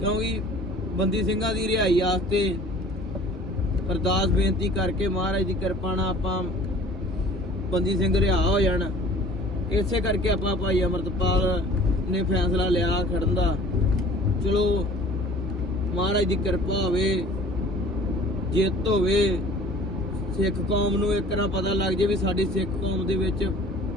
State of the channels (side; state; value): both; normal; correlation 0.47